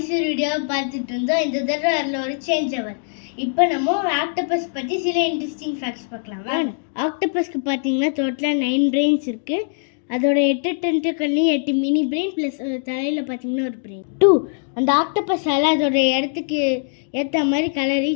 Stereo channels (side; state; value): right; silent; digital silence